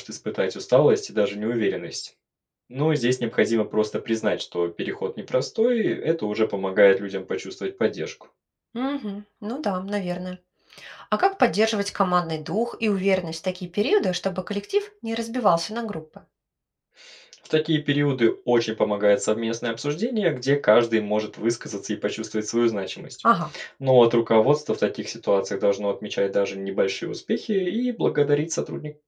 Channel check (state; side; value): identical; both; correlation 1.00